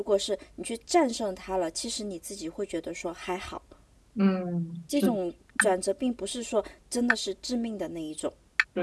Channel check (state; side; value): identical; both; correlation 1.00